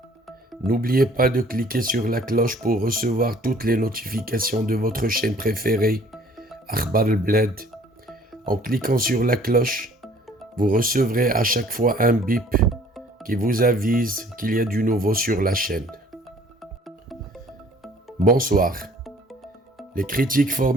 n'oubliez pas de cliquer sur la cloche pour recevoir toutes les notifications de votre chaîne préférée, Akhbar al-Bled. En cliquant sur la cloche, vous recevrez à chaque fois un bip qui vous avise qu'il y a du nouveau sur la chaîne. Bonsoir. Les critiques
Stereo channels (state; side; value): normal; both; correlation 0.55